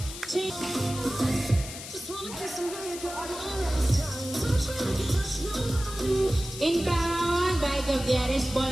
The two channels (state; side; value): noise; left; hiss, 11 dB below the sound